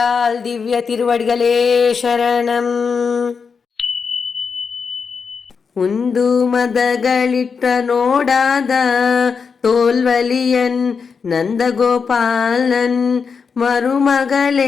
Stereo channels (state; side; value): quieter; right; 5.7 dB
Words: திவ்ய திருவடிகளே சரணம். உந்து மதகளிட்ட நோடாத தோல்வலியன் நந்தகோபாலன்